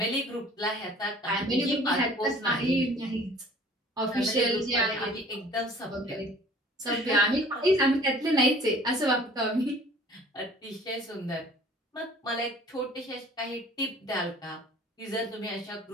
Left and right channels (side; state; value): both; normal; correlation 0.51